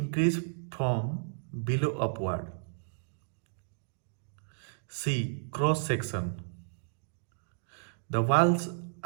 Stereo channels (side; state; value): left; silent; digital silence